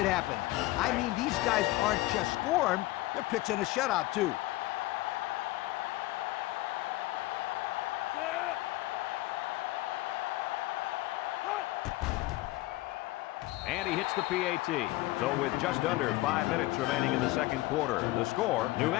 happen. I mean, these guys aren't just scoring, they're pitching a shutout, too. And he hits the PAT. So with just under 5 minutes remaining in the second quarter, the score, New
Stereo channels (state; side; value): quieter; right; 18.7 dB